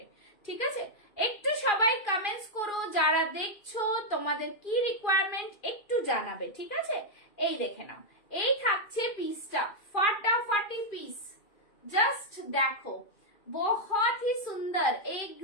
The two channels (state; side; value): late; right; 2.4 ms